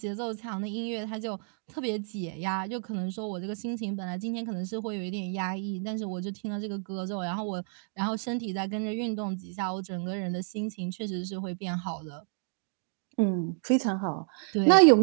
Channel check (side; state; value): left; silent; 58 dB below the other